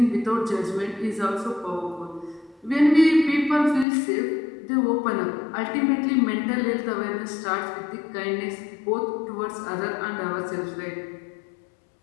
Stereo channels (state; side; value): drops out; right; at 3.9 s